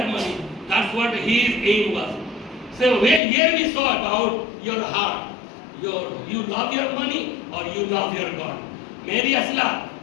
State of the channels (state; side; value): drops out; right; at 3.2 s